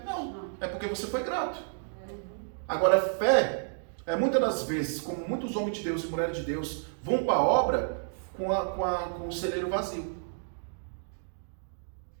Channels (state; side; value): silent; left; digital silence